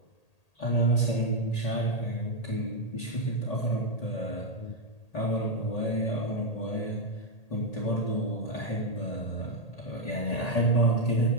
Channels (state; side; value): late; right; 1.8 ms